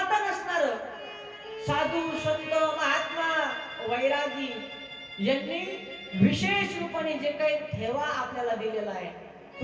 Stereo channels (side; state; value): both; identical; correlation 1.00